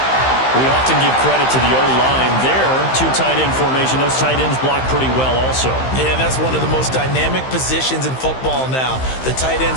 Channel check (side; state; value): right; late; 15 ms